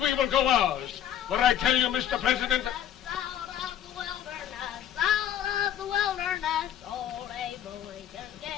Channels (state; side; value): quieter; right; 10.3 dB